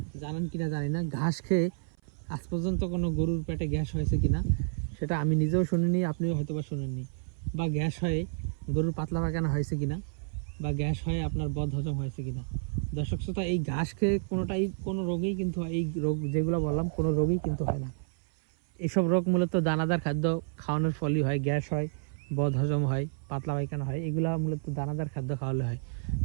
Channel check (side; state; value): left; silent; 58 dB below the other